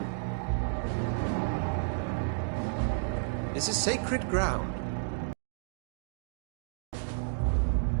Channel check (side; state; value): left; silent; digital silence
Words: This is sacred ground.